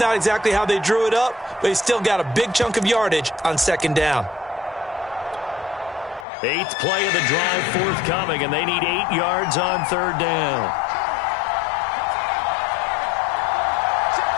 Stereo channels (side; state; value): right; drops out; at 6.2 s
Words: exactly how they drew it up, but he still got a big chunk of yardage on 2nd down. 8th play of the drive forthcoming, and they need 8 yards on 3rd down.